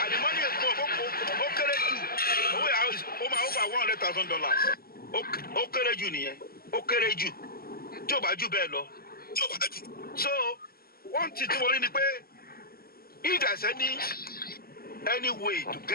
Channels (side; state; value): right; late; 0.44 ms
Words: àdìmọ́nì ẹ̀gbọ́n ó kéré jù owó yẹn ó máa over $100,000 ó kéré jù nìyẹn ó kéré jù tí ò bá jù bẹ́ẹ̀ lọ so one thing tí mo rí ni pé if there is any way to